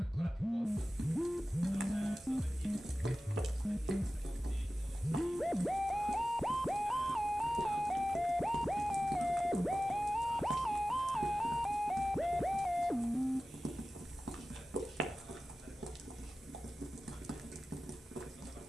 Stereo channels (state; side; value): normal; both; correlation 0.95